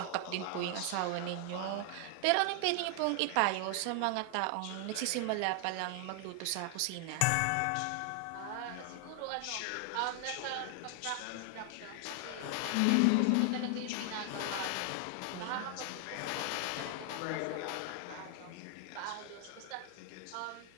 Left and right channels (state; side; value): different; both; correlation 0.00